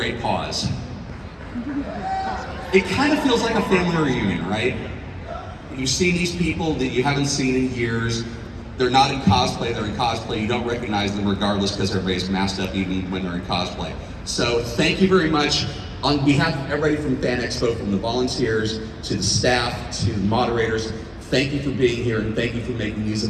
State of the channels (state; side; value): identical; both; correlation 1.00